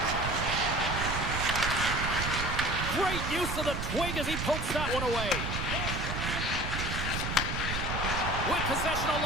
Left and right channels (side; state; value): right; noise; rumble, 3 dB below the sound